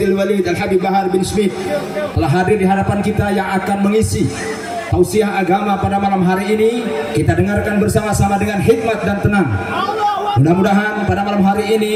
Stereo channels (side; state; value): both; identical; correlation 1.00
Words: Walid Al-Habib Bahar bin Smith telah hadir di hadapan kita yang akan mengisi tausiah agama pada malam hari ini. Kita dengarkan bersama-sama dengan hikmat dan tenang. Mudah-mudahan pada malam hari